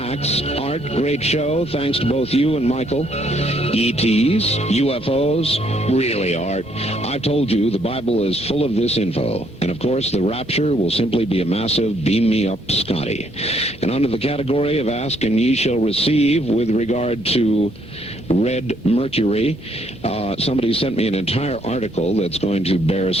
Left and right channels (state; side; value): normal; both; correlation 0.69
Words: Art, great show. Thanks to both you and Michael. ETs, UFOs, really, Art. I've told you the Bible is full of this info. And of course, the rapture will simply be a massive beam me up Scotty. And under the category of ask and ye shall receive with regard to red mercury, somebody sent me an entire article that's going to bear